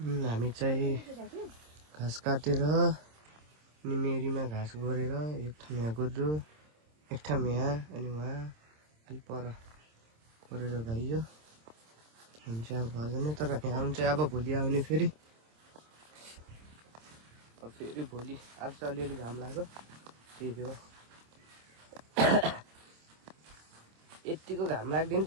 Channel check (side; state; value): left; late; 26 ms